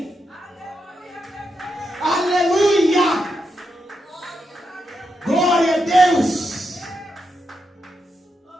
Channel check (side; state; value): both; normal; correlation 0.84